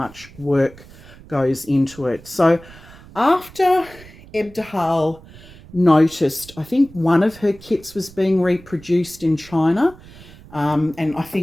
work goes into it. So after Ebtabhal noticed, I think one of her kits was being reproduced in China, and I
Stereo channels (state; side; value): noise; right; rumble, 21 dB below the sound